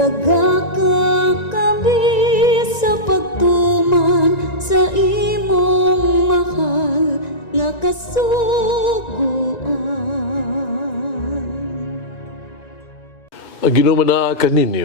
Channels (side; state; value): right; late; 1.9 ms